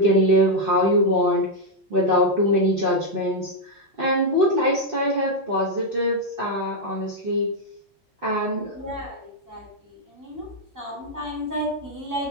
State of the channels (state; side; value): normal; both; correlation 0.00